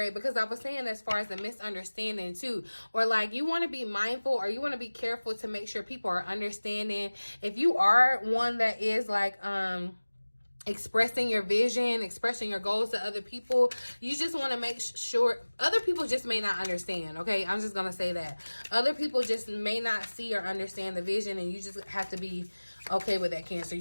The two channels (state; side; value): inverted; both; correlation -1.00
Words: Because I was saying as far as the misunderstanding too. Or like, you want to be mindful, or you want to be careful to make sure people are understanding. If you are one that is like, expressing your vision, expressing your goals to other people, you just want to make sure other people just may not understand, okay? I'm just going to say that. Other people just may not see or understand the vision, and you just have to be okay with that, Cancer.